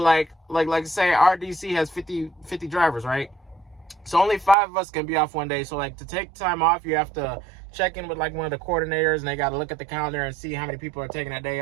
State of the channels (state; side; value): drops out; left; at 4.5 s